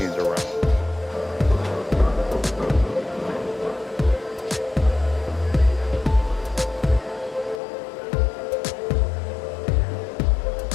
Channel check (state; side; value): drops out; right; at 7.6 s